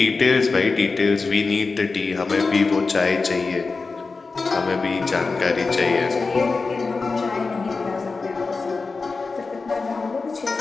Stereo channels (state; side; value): quieter; right; 4.2 dB